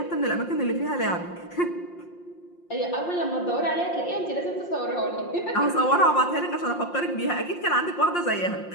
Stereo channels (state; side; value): late; right; 5.7 ms